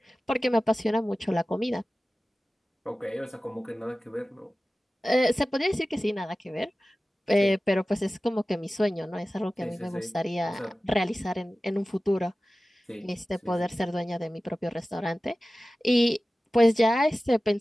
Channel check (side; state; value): both; normal; correlation 0.96